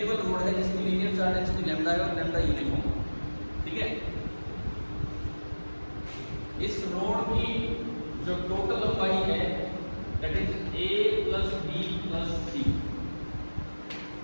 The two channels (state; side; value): inverted; both; correlation -1.00